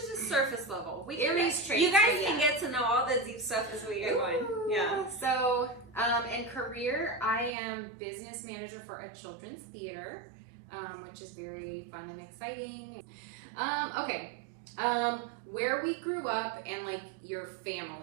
just surface level. Aries traits. You guys can get to know all the deep stuff as we go on. Yeah. So, in career, I am business manager for a children's theater, which is very fun and exciting. Okay. Where we grew up and like your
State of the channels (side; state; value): left; drops out; at 7.5 s